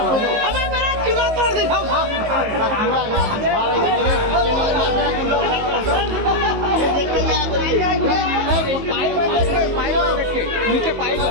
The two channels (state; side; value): late; left; 19 ms